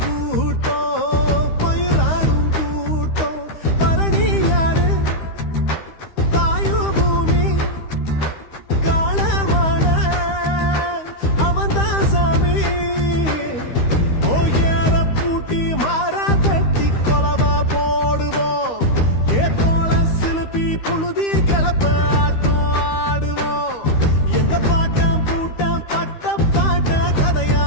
பயிராடும் கூட்டம் பரணி யாரு வாயு பூமி காலமான அவன்தான் சாமி ஓயர பூட்டி மாறா தட்டி கொலவா போடுவோம் ஏத்தோள சிலுப்பி புழுதி கிளப்ப ஆட்டம் ஆடுவோம் எங்க பாட்டம் பூட்டம் பட்ட பாட்ட கதையா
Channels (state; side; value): late; right; 13 ms